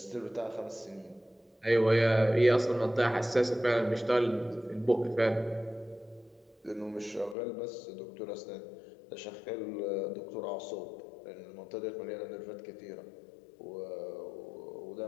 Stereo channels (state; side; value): drops out; right; at 7.4 s